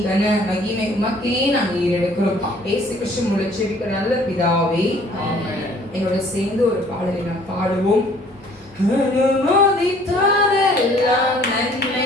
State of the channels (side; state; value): both; normal; correlation 0.57